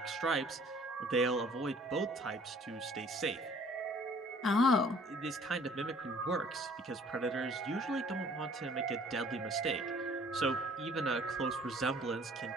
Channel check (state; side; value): normal; both; correlation 0.55